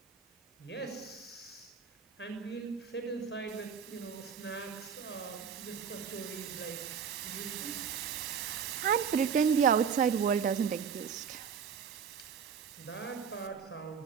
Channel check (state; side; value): quieter; left; 6.8 dB